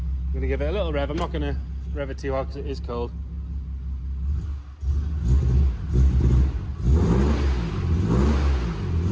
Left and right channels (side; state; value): both; identical; correlation 1.00